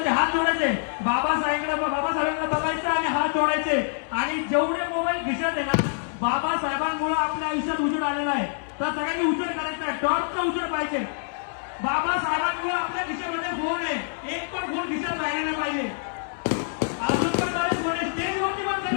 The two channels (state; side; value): silent; right; digital silence